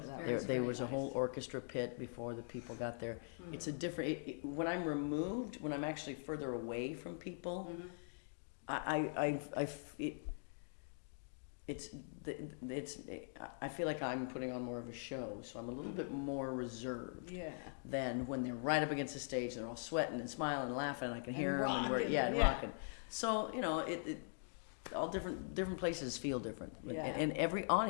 that Very, was There very was a nice. whole orchestra pit before the people got there. It's a different. When I'm removed, when I'm actually further away from people, I feel like I'm putting on more of a show, so I'm a little bit more reserved. Yeah. Than when they're right up against the stage, they're all sweating and smiling and laughing, and I can hear them, and rocking, and yeah. rocking. So you know, all different places feel different, Yeah. and every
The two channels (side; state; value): right; silent; digital silence